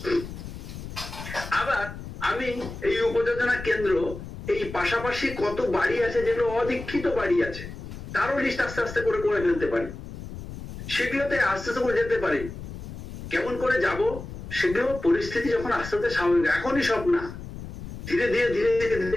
আবার আমি এই উপযোজনা কেন্দ্র এই পাশাপাশি কত বাড়ি আছে যেগুলো অদীক্ষিত বাড়ি আছে, তারও লিস্ট আস্তে আস্তে করে ফেলতে পারি। সেগুলোতে আস্তে আস্তে করে যেতে পারি। কেমন করে যাব? সেগুলো পরিস্থিতি যখন আস্তে আস্তে স্বাভাবিক, এখনই সব না, ধীরে ধীরে ধীরে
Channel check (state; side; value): noise; left; rumble, 11 dB below the sound